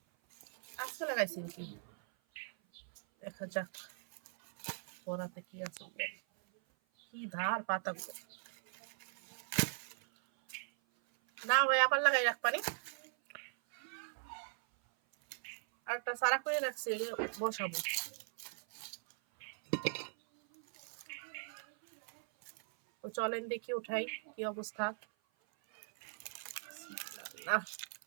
আজকে লাগাইছি নাকি, দেখা যাক পরাতে কি আছে। কি ধার পাতা না ভাই, আবার লাগাই রাখ পারি। আর একটা সারা করে রাখছি, বসাবো। তো চলেন দেখি উঠাই কি অবস্থা।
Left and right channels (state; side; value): silent; left; 51 dB below the other